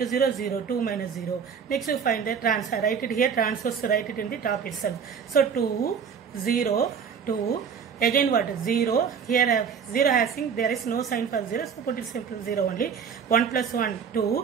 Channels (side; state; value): left; quieter; 6.8 dB